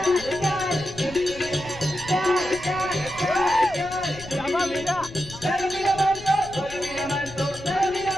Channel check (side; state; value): left; noise; rumble, 16 dB below the sound